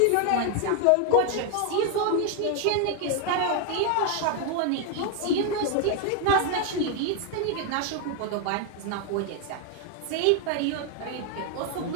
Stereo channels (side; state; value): both; different; correlation 0.01